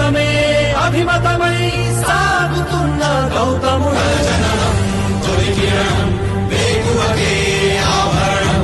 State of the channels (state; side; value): identical; both; correlation 1.00